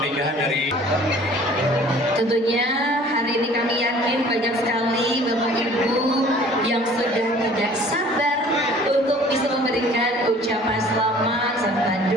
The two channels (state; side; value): normal; both; correlation 0.51